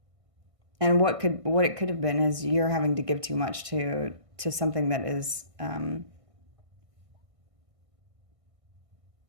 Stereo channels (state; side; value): late; left; 1.6 ms